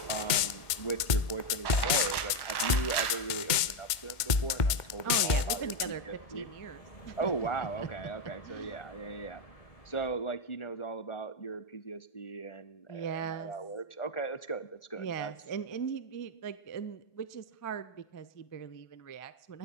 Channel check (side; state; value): right; late; 1.5 ms